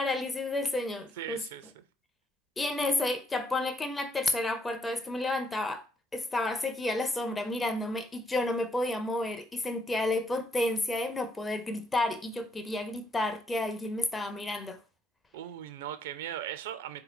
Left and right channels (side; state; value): both; normal; correlation 0.74